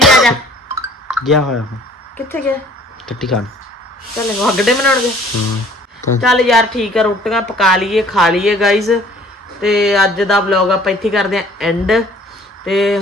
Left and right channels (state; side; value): normal; both; correlation 0.54